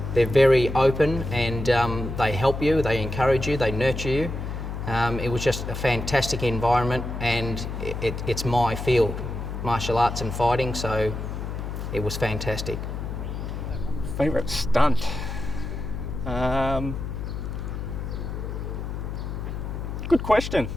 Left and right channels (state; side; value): noise; left; hum, 5 dB below the sound